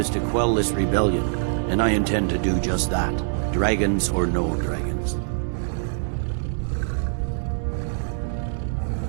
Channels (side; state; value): left; silent; digital silence